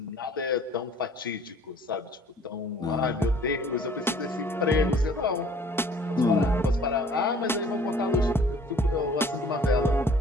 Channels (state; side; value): normal; both; correlation 0.54